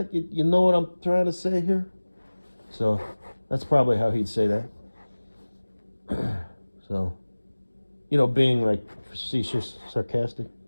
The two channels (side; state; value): both; inverted; correlation -1.00